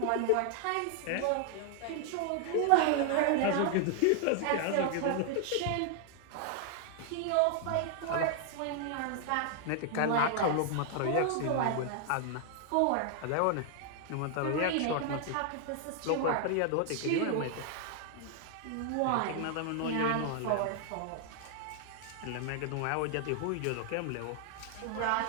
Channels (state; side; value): different; both; correlation 0.00